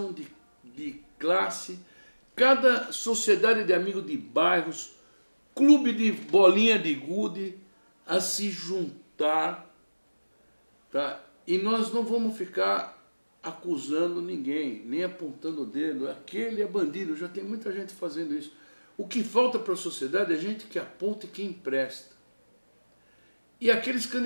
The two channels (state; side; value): inverted; both; correlation -1.00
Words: de classe, cada sociedade de amigos de bairros, clube de bolinha de gude, a se juntar, tá? E nós não vamos ficar acusando ninguém, nem apontando o dedo, aquele é bandido, já tem muita gente fazendo isso. O que falta para a sociedade é gente que aponta e que empresta. E aqueles